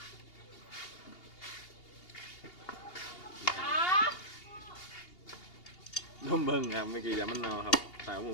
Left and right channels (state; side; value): late; right; 2.8 ms